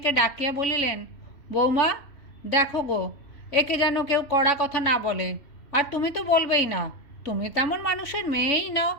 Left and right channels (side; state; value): right; late; 3.5 ms